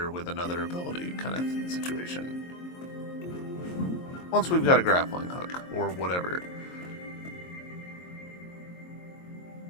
with another ability kind of situation. Once we've got a grappling hook or whatever.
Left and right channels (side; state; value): right; late; 22 ms